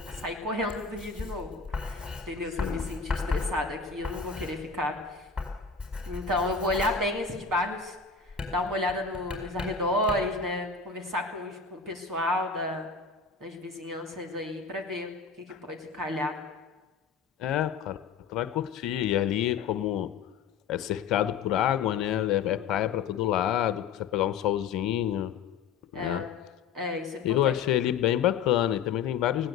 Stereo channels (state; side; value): quieter; right; 5.9 dB